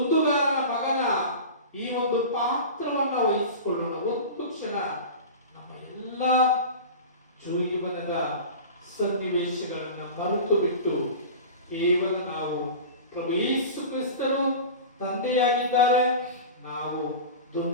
ಮಗನ ಈ ಒಂದು ಪಾತ್ರವನ್ನ ವಹಿಸಿಕೊಳ್ಳೋಣ. ಒಂದು ಕ್ಷಣ ನಮ್ಮ ಎಲ್ಲ ಜೀವನದ ಸನ್ನಿವೇಶಗಳನ್ನ ಮರೆತು ಬಿಟ್ಟು ಕೇವಲ ನಾವು ಪ್ರಭು ಯೇಸು ಕ್ರಿಸ್ತರು ತಂದೆಯಾಗಿದ್ದಾರೆ, ನಾವು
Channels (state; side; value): inverted; both; correlation -0.32